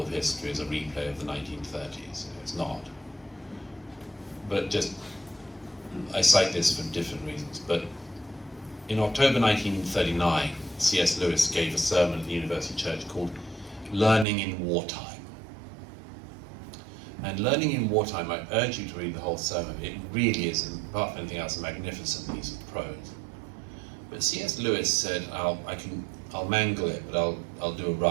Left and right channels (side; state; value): left; drops out; at 14.2 s